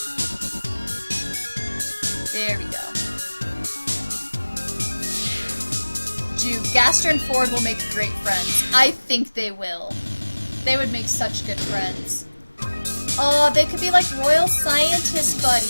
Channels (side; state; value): both; inverted; correlation -1.00